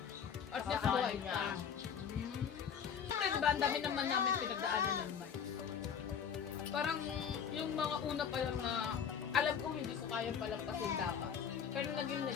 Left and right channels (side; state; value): right; quieter; 7.5 dB